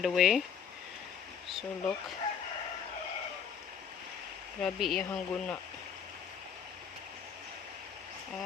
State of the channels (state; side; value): quieter; right; 7.3 dB